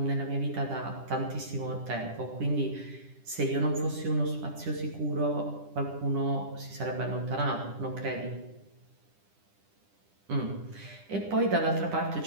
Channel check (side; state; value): left; late; 10 ms